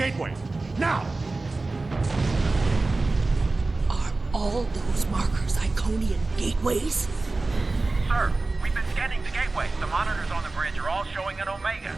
now! Are all those markers Iconian gateways? Sir, we've been scanning the gateway. The monitors on the bridge are all showing an Omega.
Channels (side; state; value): left; quieter; 3.4 dB